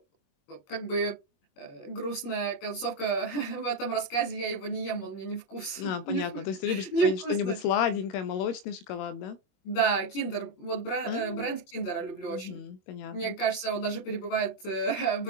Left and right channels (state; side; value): late; right; 21 ms